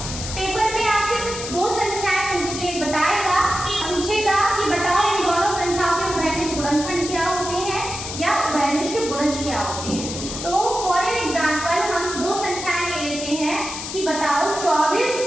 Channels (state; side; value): noise; left; hiss, 7 dB below the sound